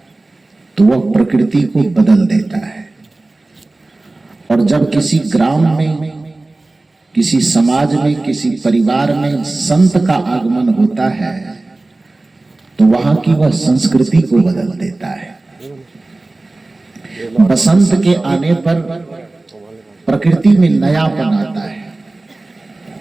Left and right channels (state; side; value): quieter; left; 3.0 dB